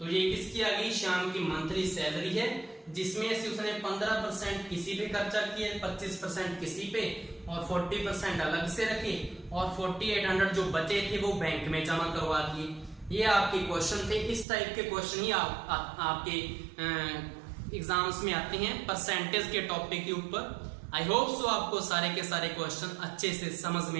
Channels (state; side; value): drops out; left; at 14.5 s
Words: ये किसकी आ गई, श्याम की मंथली सैलरी है, जिसमें से उसने 15% किसी पे खर्चा किए, 25% किसी पे और 40% अलग से रखे और 4800 जो बचे थे वो बैंक में जमा करवा दिए। ये आपके क्वेश्चन थे। इस टाइप के क्वेश्चन ही आपके एग्जाम्स में आते हैं परसेंटेज के टॉपिक के ऊपर। आई होप सो आपको सारे के सारे क्वेश्चन अच्छे से समझ